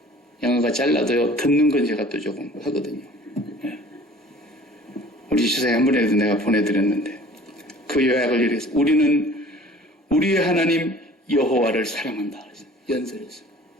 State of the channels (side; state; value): both; normal; correlation 0.48